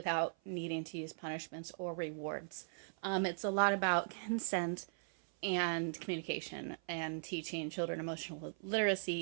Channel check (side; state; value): left; silent; 52 dB below the other